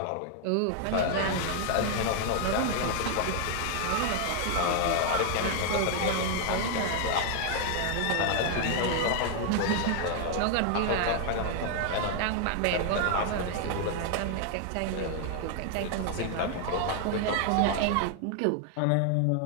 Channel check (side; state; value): both; different; correlation 0.00